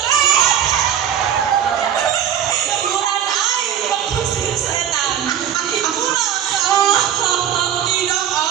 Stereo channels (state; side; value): quieter; left; 9.6 dB